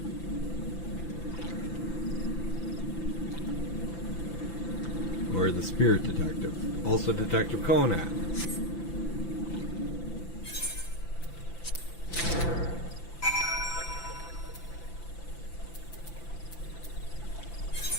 Or the Spirit Detective. Also Detective Conan.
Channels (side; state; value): right; late; 5.9 ms